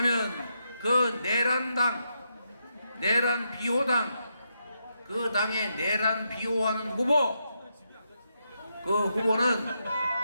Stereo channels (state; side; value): inverted; both; correlation -0.82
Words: 그 내란 비호당, 그 당의 내란 비호하는 후보, 그 후보는